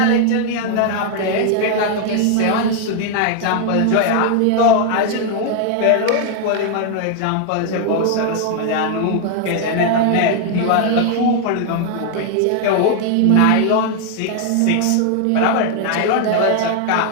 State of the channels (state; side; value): different; both; correlation 0.00